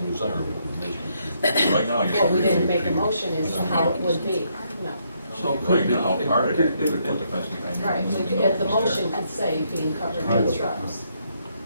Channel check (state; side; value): inverted; both; correlation -0.74